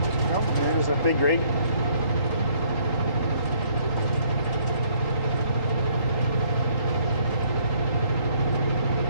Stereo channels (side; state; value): right; late; 3.8 ms